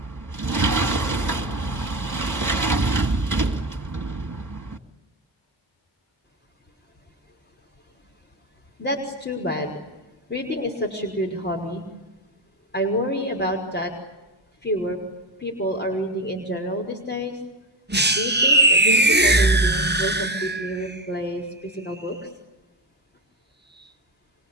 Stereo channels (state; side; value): normal; both; correlation 0.16